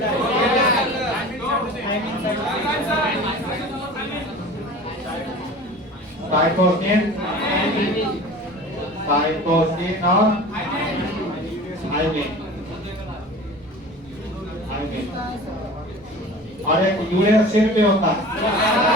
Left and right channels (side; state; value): both; normal; correlation 0.39